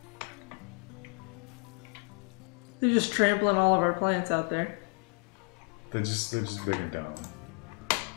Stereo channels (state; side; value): quieter; right; 37.4 dB